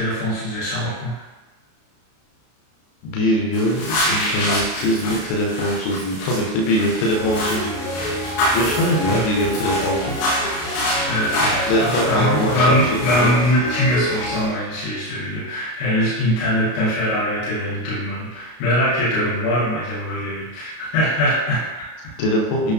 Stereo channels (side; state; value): right; late; 33 ms